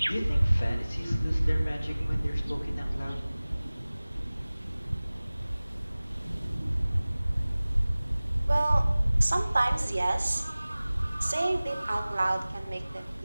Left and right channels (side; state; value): both; inverted; correlation -0.99